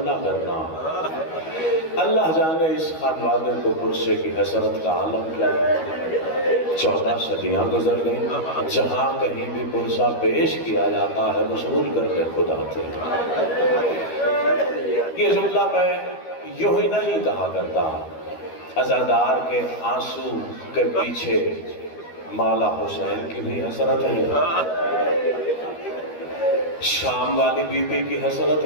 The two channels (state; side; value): late; right; 12 ms